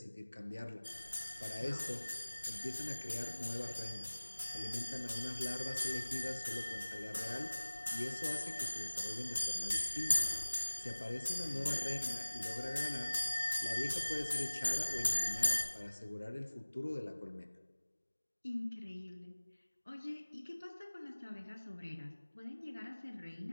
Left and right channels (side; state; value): both; inverted; correlation -1.00